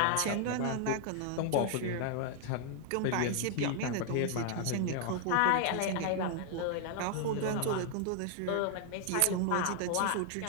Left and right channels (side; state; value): both; different; correlation 0.00